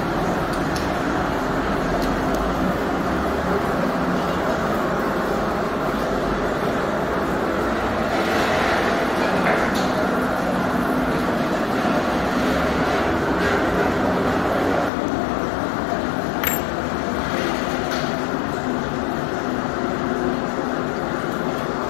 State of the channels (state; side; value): drops out; right; at 14.9 s